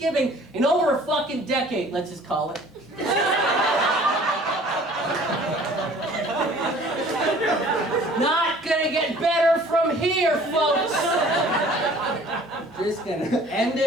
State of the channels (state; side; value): normal; both; correlation 0.51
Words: in over a fucking decade, let's just call it. Not gonna get better from here, folks. Just gonna end